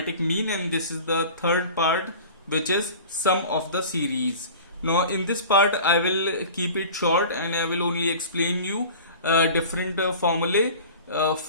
mean, and this is the third part, which is sum of the series. Now, in this part, I will keep it short and I will only explain you different formulae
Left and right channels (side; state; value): both; inverted; correlation -0.40